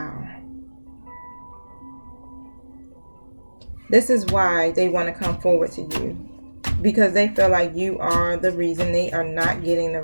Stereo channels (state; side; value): inverted; both; correlation -1.00